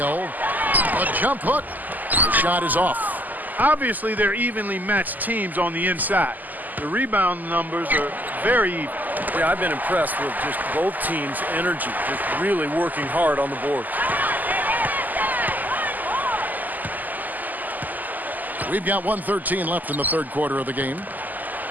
A jump hook. The shot is off. Obviously, they're evenly matched teams on the inside. The rebound numbers are very even. Yeah, I've been impressed with just both teams' energy, just really working hard on the board. We've got 1:13 left in the third quarter of the game.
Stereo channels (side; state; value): left; late; 0.083 ms